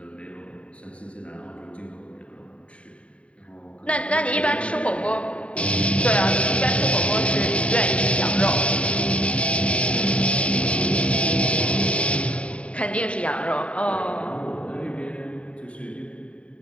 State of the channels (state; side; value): late; right; 0.062 ms